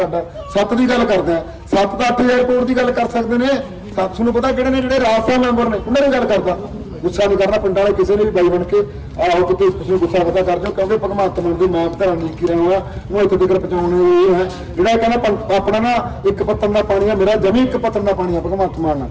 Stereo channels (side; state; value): both; identical; correlation 1.00